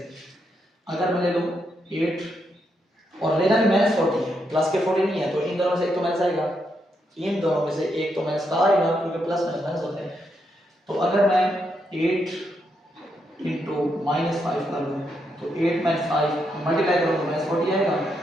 अगर मैं ले लूँ 8 और लेना भी माइनस 40 है, प्लस के 40 नहीं है, तो इन दोनों में से एक तो माइनस आएगा, इन दोनों में से एक तो माइनस का आएगा क्योंकि प्लस माइनस माइनस होते हैं। तो अगर मैं 8 इंटू माइनस 5 कर लूँ तो 8 माइनस 5 मल्टीप्लाई करूँ तो माइनस 40 आएगा।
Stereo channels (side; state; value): both; normal; correlation 0.80